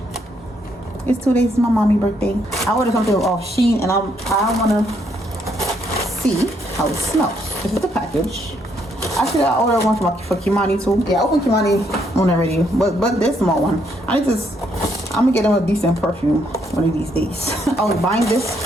it's 2 days to my mommy birthday. I ordered something off Shein and I want to see how it smells. This is the package. Actually, I ordered one for Kimani too. Yeah, I opened Kimani one already, but this small one. I'm gonna get him a decent perfume one of these days. I was buying this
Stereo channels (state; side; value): normal; both; correlation 0.73